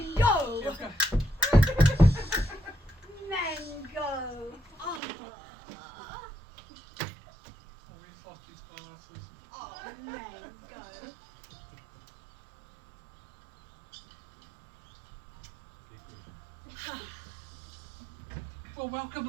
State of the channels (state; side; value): drops out; left; at 5.0 s